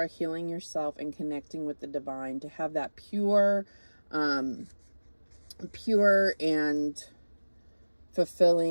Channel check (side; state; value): both; inverted; correlation -1.00